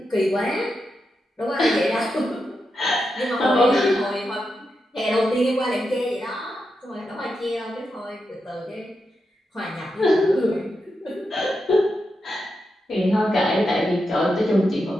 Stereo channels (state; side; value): normal; both; correlation 0.87